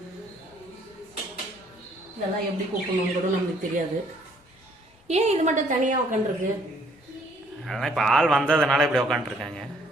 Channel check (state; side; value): normal; both; correlation 0.63